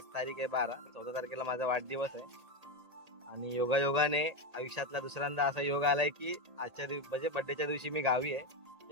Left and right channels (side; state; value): left; late; 1.8 ms